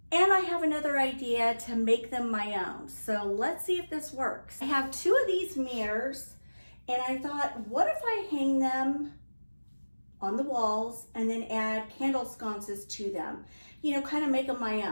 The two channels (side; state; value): both; inverted; correlation -1.00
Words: And I have another idea to make them my own. So let's see if this works. I have 2 of these mirrors, and I thought, what if I hang them on the walls and then add candle sconces to them? You know, kind of make them my